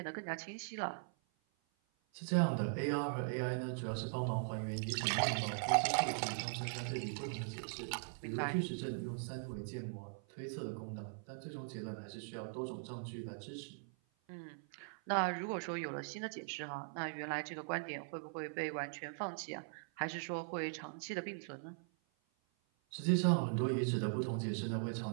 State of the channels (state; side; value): silent; left; 51 dB below the other